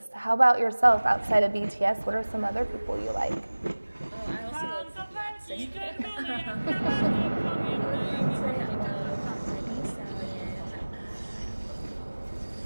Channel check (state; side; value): inverted; both; correlation -1.00